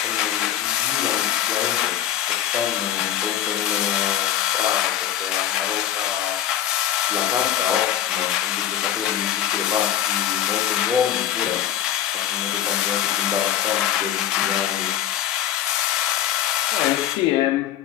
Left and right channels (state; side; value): quieter; right; 11.2 dB